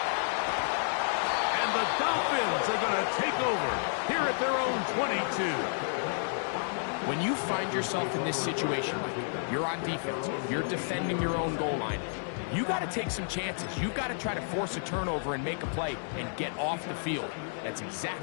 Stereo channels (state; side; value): silent; right; digital silence